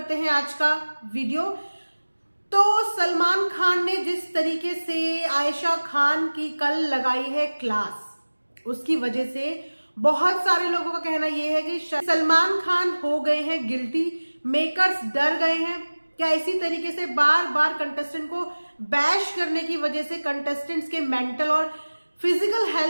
हैं आज का वीडियो। तो सलमान खान ने जिस तरीके से आयशा खान की कल लगाई है क्लास, उसकी वजह से बहुत सारे लोगों का कहना यह है कि सलमान खान हो गए हैं गिल्टी, मेकर्स डर गए हैं। क्या इसी तरीके से बार बार कंटेस्टेंट को बैश करने की वजह से कंटेस्टेंट्स के मेंटल और फिजिकल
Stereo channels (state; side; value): inverted; both; correlation -1.00